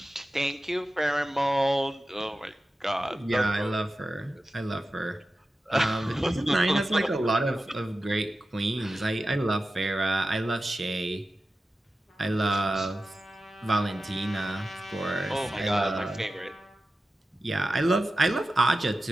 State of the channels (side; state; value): both; normal; correlation 0.93